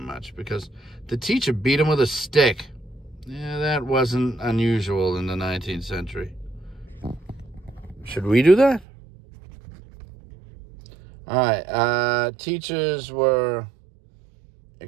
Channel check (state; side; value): drops out; left; at 8.8 s